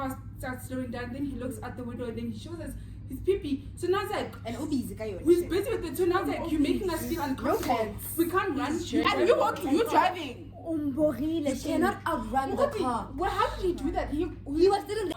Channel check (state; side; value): identical; both; correlation 1.00